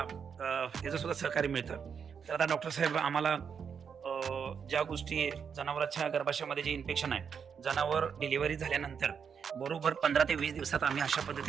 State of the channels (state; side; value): quieter; left; 6.9 dB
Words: त्याचं सुद्धा सहकार्य मिळतं. तर आता डॉक्टर साहेब आम्हाला ज्या गोष्टी जनावरांच्या गर्भाशयामध्ये जे इन्फेक्शन आहे, जनावर डिलिव्हरी झाल्यानंतर बरोबर 15 ते 20 दिवसात आम्ही अशा